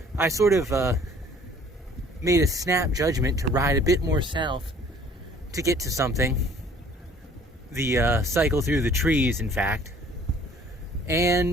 I sort of made a snap judgment to ride a bit more south to get to something. The cycle through the trees, in fact.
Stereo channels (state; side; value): normal; both; correlation 0.54